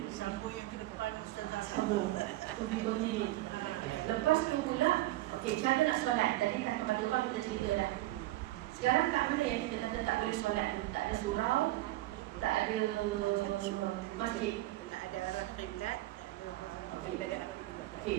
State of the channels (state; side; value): quieter; left; 17.2 dB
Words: Sambung yang ke depan Ustazah. Sambung. Tunjuk-tunjuk. Lepas tu pula, okey, cara nak solat. Tadi tak kapal terbang kita cerita dah. Sekarang kat mana yang kita kata tak boleh solat ni? Tak ada surau, tak ada masjid. Tak ada arah kiblat, tak ada arah kiblat. Okey.